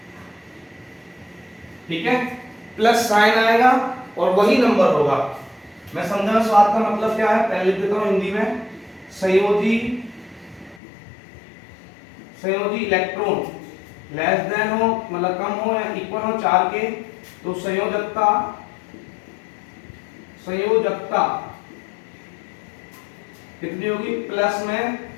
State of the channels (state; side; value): drops out; right; at 10.8 s